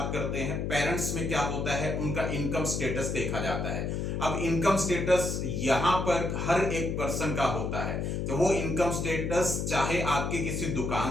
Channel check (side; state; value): left; noise; hum, 2 dB below the sound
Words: करते हैं। पेरेंट्स में क्या होता है, उनका इनकम स्टेटस देखा जाता है। अब इनकम स्टेटस यहां पर हर एक पर्सन का होता है, तो वो इनकम स्टेटस चाहे आपकी किसी